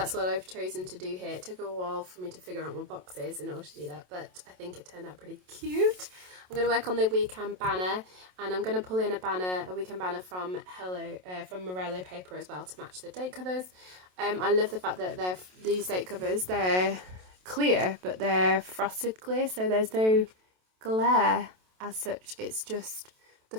what I've chosen to do here. It took a while for me to figure out my boxes in order to do that, but I think it turned out pretty cute. I'm going to work on the weekend banner, and I'm going to pull in a weekend banner from Morello paper as well to match the date covers. I love the fact that these date covers, they're clear, but they're frosted clear, so there's no glare as such. It's just the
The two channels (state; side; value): late; left; 27 ms